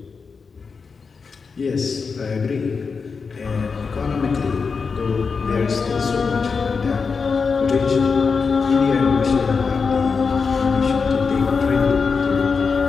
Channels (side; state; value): right; quieter; 5.1 dB